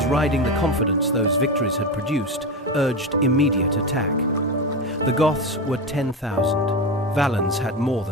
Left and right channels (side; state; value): both; normal; correlation 0.18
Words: riding the confidence those victories had produced, urged immediate attack. The Goths were 10,000. Valens had more